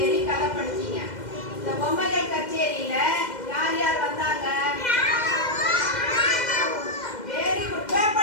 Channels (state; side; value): late; right; 2.1 ms